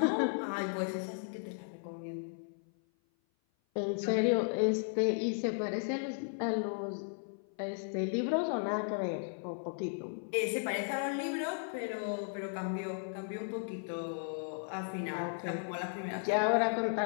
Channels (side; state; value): right; silent; 54 dB below the other